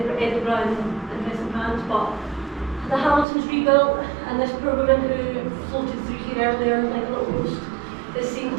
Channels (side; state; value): left; drops out; at 3.2 s